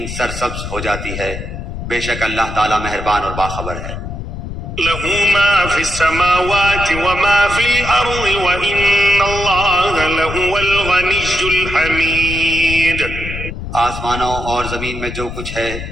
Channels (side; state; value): left; noise; rumble, 8 dB below the sound